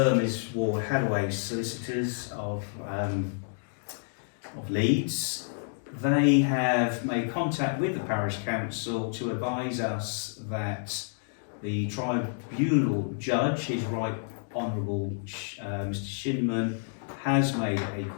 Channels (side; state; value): right; silent; digital silence